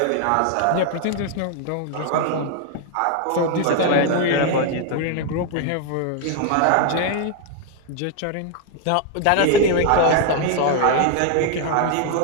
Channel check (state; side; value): different; both; correlation 0.00